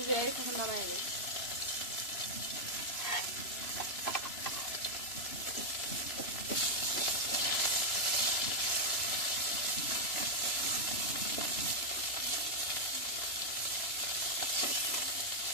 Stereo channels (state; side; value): late; right; 3.0 ms